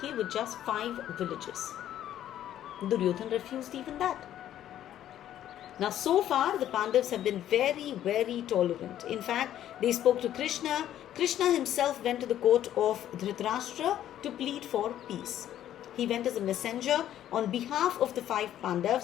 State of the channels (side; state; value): right; quieter; 11.6 dB